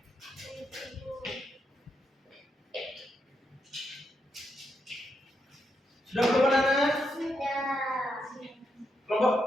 Sudah belum anak? Sudah. Kelompok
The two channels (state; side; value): normal; both; correlation 0.82